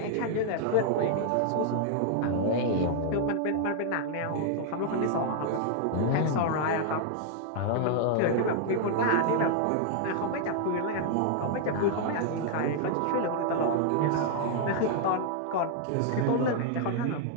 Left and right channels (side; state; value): both; different; correlation 0.00